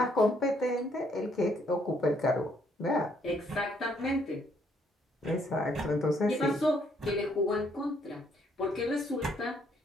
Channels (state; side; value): normal; both; correlation 0.69